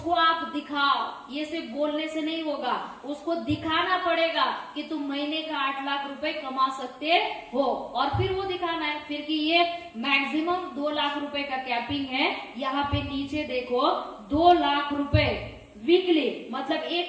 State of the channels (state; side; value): identical; both; correlation 1.00